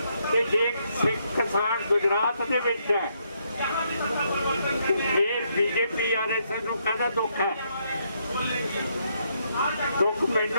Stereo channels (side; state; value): both; inverted; correlation -0.75